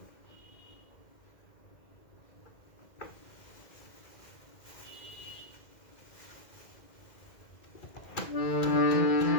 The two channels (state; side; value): late; right; 2.1 ms